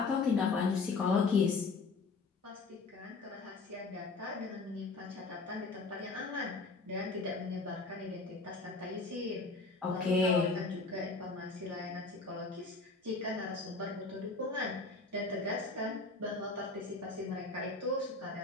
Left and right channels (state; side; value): quieter; right; 3.8 dB